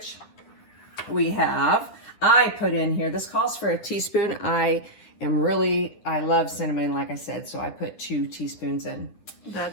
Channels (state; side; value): late; right; 9.9 ms